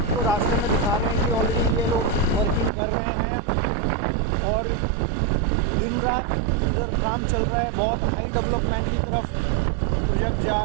रास्ते में दिखा रहे हैं कि ऑलरेडी ये लोग वर्किंग कर रहे हैं और दिन रात इधर काम चल रहा है। बहुत हाई डेवलपमेंट की तरफ प्रोजेक्ट जा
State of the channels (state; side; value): drops out; left; at 2.7 s